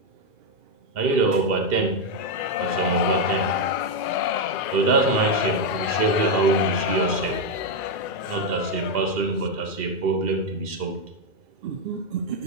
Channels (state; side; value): late; left; 2.4 ms